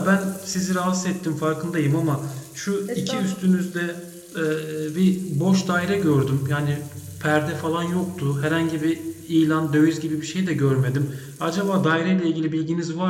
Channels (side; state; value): both; identical; correlation 1.00